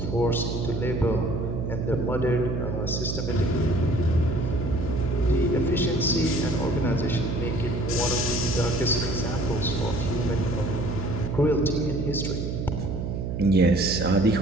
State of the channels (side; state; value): right; noise; hum, 3 dB below the sound